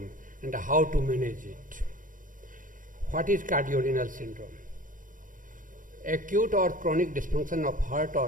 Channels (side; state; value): left; late; 0.38 ms